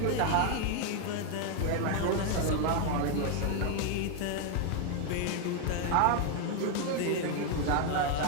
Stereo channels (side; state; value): both; different; correlation 0.01